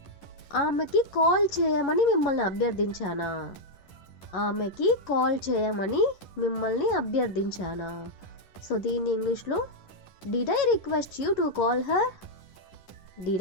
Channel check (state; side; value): late; right; 10 ms